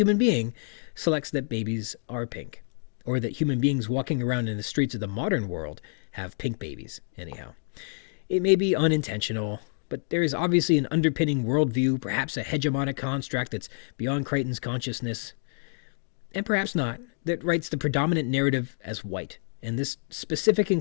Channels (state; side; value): silent; right; 60 dB below the other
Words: being, selects that babies are pink, or that human beings walking around in the streets of the modern world have pink babies, anyhow. It may be unintentional, but there is obviously an underpinning worldview, perhaps a hegemonic construct that's beyond Crichton's consciousness, and perhaps not, that writes the predominant narrative as white. And this specific